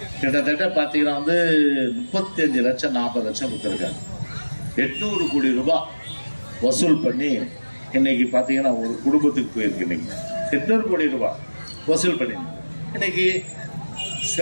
கிட்டத்தட்ட பார்த்தீங்கன்னா 35 லட்சம் 40 லட்சம் கொடுத்துருக்காங்க. 800 கோடி ரூபாய் வசூல் பண்ணி இன்னைக்கு பார்த்தீங்கன்னா ஒரு குடும்பத்துக்கு போயிருக்கு. இன்னைக்கு 800 கோடி ரூபாய் வசூல் பண்ணி இன்னைக்கு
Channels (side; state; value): both; inverted; correlation -1.00